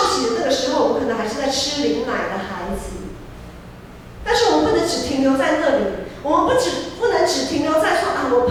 洗的那个时候，我们可能还是在吃灵奶的孩子，但是我们不能只停留在那里。我们不能只停留在说啊，我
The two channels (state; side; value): identical; both; correlation 1.00